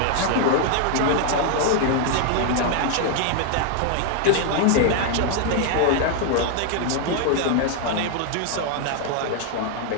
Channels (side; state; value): both; different; correlation 0.00